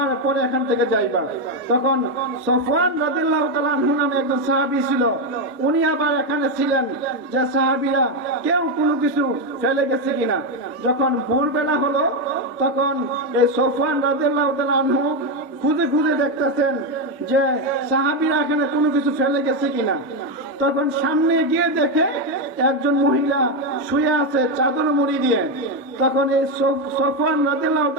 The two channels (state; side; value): normal; both; correlation 0.07